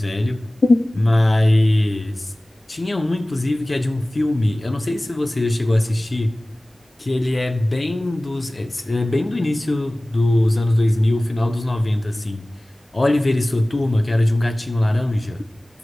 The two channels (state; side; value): normal; both; correlation 0.98